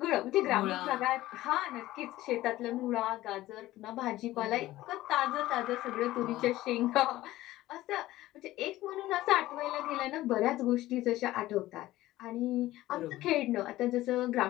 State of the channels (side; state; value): right; quieter; 16.2 dB